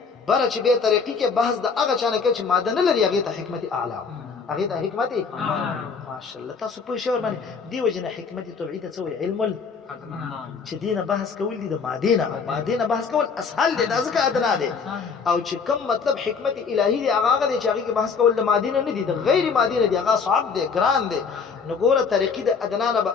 بره چې بیا ترقي کې بحث د هغه چا نه کوي چې ماده نه لري، هغې ته حکمت اعلی، هغې ته حکمت ماشاءالله. تاسو پوه شئ ورباندې؟ دې وجې نه حکمت طبعي ته څه وایي؟ علم چې دې نه بحث کول دي د مادې نه، او مادې نه بحث کول اسهل دی، دا ځکه ادنا دی. او چې کوم مطلب حکمت الهي دی هغه دی چې هغې کې بحث کول د مادې نه نه دي، د غیر مادې نه دي، هغه صعب دی، ګران دی. نو ګوره ترقي د ادنا نه به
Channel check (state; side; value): quieter; right; 5.4 dB